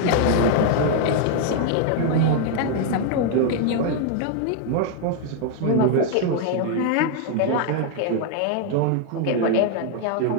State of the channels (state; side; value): different; both; correlation 0.00